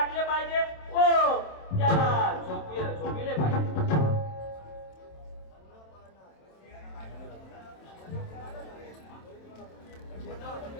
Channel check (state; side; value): late; right; 27 ms